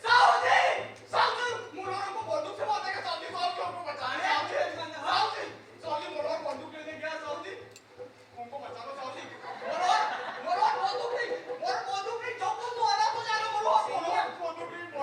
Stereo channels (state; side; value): identical; both; correlation 1.00